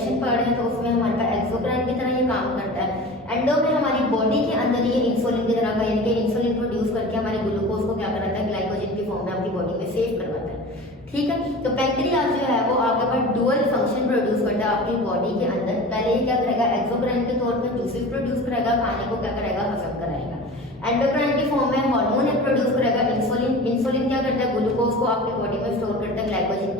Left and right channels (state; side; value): normal; both; correlation 0.36